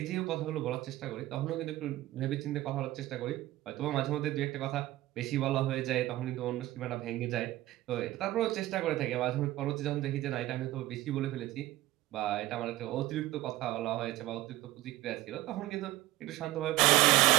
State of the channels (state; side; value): quieter; left; 16.9 dB